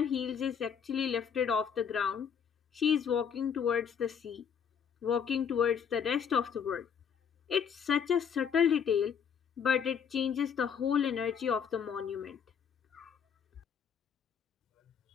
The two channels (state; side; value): quieter; right; 7.3 dB